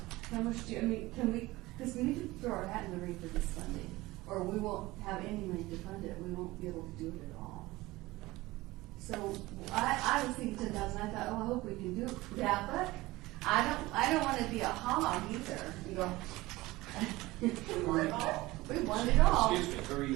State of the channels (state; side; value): quieter; left; 19.6 dB